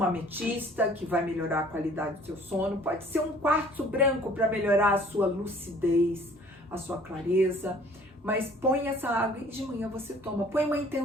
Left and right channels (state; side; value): normal; both; correlation 0.54